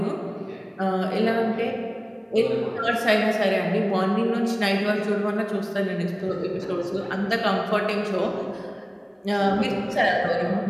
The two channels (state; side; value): identical; both; correlation 1.00